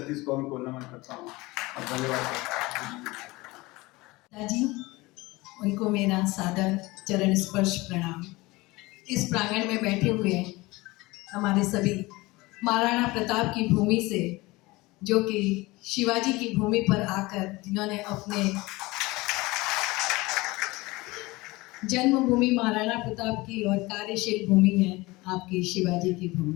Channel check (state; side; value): quieter; right; 21.7 dB